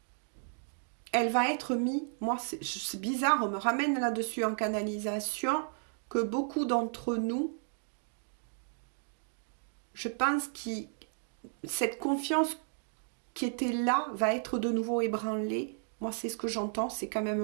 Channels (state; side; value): silent; left; digital silence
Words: elle va être mise, moi c'est bizarre, on me ramène là-dessus en canalisation, que beaucoup d'entre nous, je pense que cette confiance qui était là va être de nouveau ébranlée. Moi c'est ce que j'entends, c'est quand même